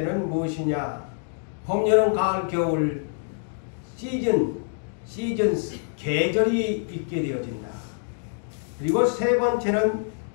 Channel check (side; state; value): right; silent; digital silence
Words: 무엇이냐? 봄, 여름, 가을, 겨울 시즌스, 계절이 있게 되어진다. 그리고 세 번째는